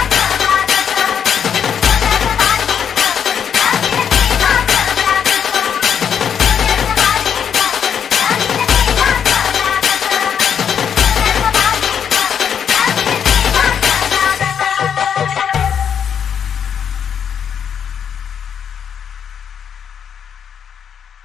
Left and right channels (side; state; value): right; quieter; 8.0 dB